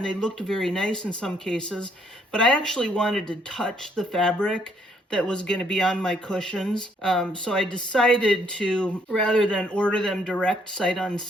they looked very nice in some cases. But I actually wanted to touch the fabric that was going to be on my cushions. So I decided to, rather than order them direct sight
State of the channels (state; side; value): normal; both; correlation 0.68